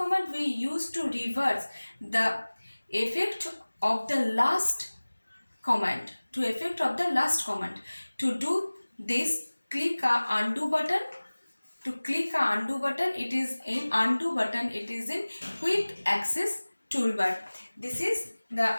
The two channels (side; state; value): both; inverted; correlation -1.00